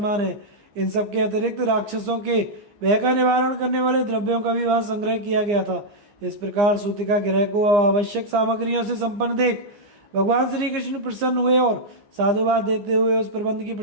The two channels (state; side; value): late; left; 15 ms